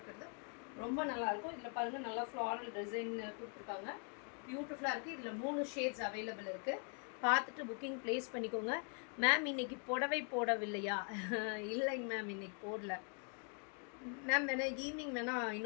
ரொம்ப நல்லாயிருக்கும். இதில் பாருங்கள், நல்லா ஃப்ளாரல் டிசைன் கொடுத்துருக்காங்க. பியூட்டிஃபுல்லாக இருக்குது. இதில் 3 ஷேட்ஸ் அவைலபிள் இருக்குது. பார்த்துட்டு புக்கிங் ப்ளேஸ் பண்ணிக்கோங்க. மேம் இன்றைக்கி புடவை போடவில்லையா? இல்லைங்க மேம், இன்றைக்கி போடல மேம். வேணால் ஈவினிங் வேணால்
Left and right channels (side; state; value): right; quieter; 39.9 dB